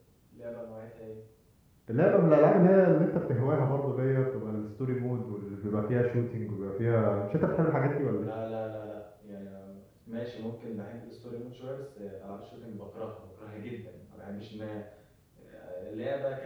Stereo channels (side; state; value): both; identical; correlation 1.00